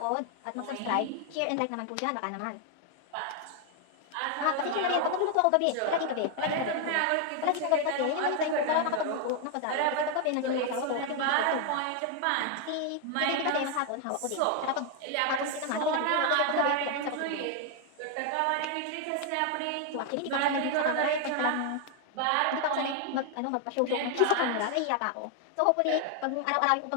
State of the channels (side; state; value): both; different; correlation 0.00